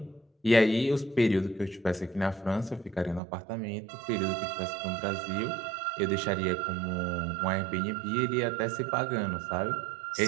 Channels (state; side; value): drops out; left; at 3.2 s